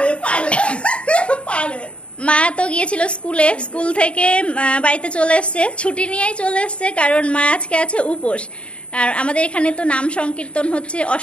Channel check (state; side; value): late; right; 0.059 ms